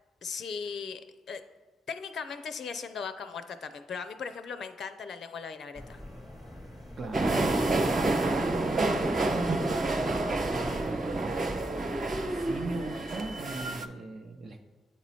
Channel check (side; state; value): both; normal; correlation 0.81